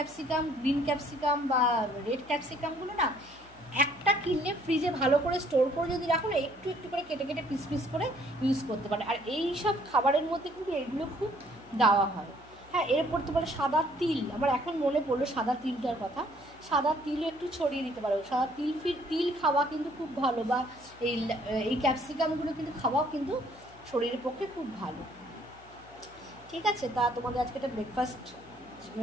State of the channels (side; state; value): left; noise; hum, 24 dB below the sound